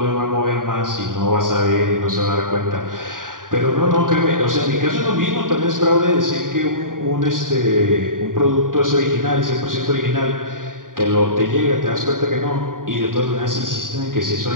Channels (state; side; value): late; left; 0.90 ms